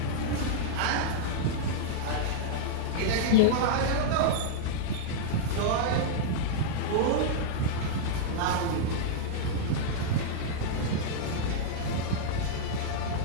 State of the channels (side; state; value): both; different; correlation -0.02